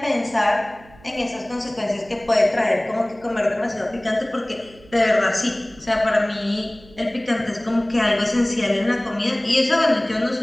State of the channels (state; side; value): noise; right; hum, 24 dB below the sound